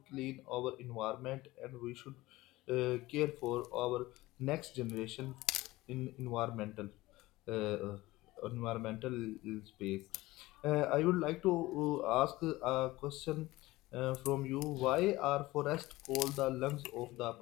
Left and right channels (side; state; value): right; quieter; 18.8 dB